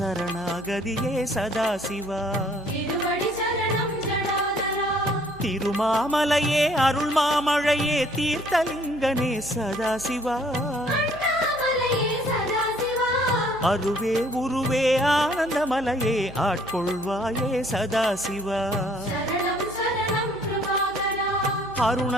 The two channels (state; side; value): noise; right; hum, 21 dB below the sound